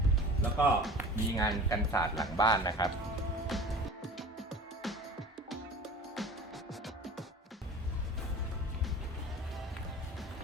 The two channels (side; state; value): both; normal; correlation 0.39